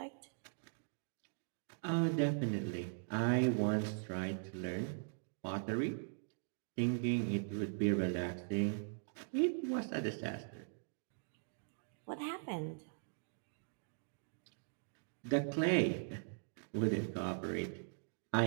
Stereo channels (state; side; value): silent; left; digital silence